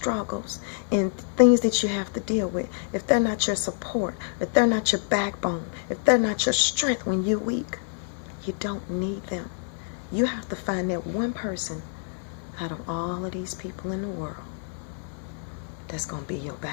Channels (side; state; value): right; silent; 60 dB below the other